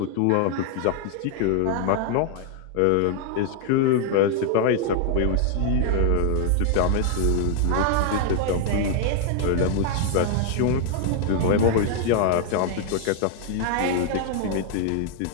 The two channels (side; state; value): both; different; correlation 0.00